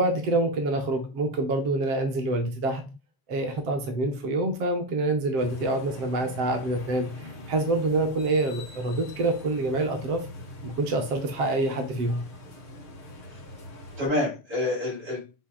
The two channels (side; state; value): left; late; 7.6 ms